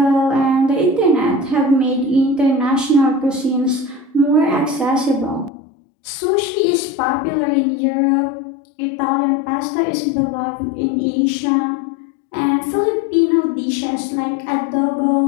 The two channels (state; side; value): drops out; right; at 5.5 s